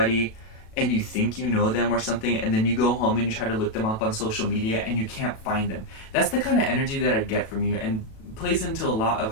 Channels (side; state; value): right; late; 37 ms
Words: and you think you know them or something, and then you go home and you try to look them up on social media and you can't find them. That's the kind of energy that I get from you, and plays into a lot of